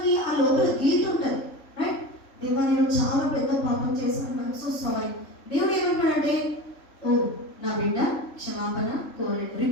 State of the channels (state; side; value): late; right; 3.4 ms